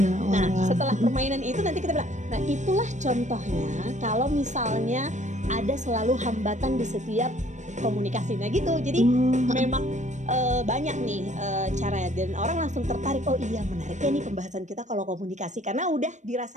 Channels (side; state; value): left; late; 0.35 ms